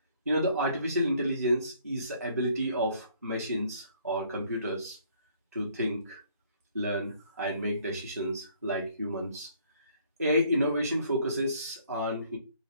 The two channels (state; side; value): inverted; both; correlation -0.62